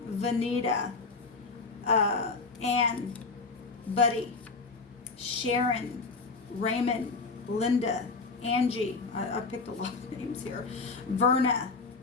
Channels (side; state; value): right; quieter; 4.1 dB